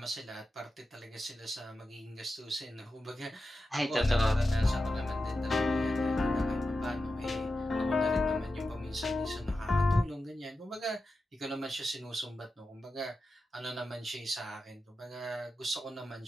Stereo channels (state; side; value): normal; both; correlation 0.91